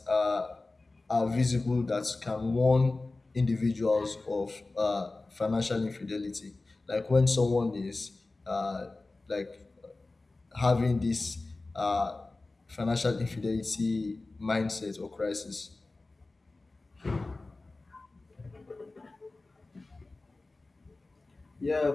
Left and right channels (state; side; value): quieter; right; 3.3 dB